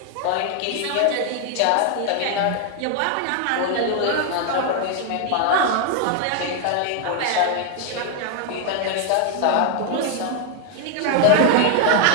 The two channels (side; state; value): both; different; correlation 0.00